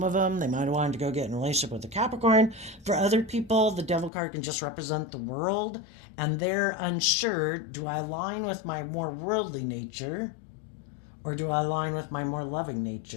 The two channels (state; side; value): drops out; right; at 4.1 s